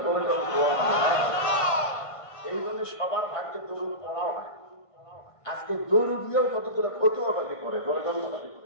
এই জন্য সবার ভাগ্যে দরুদ পড়াও হয়। আজকে দরুদ দিয়েও কতগুলো ফতোয়াবাজি করে,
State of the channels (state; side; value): late; right; 1.5 ms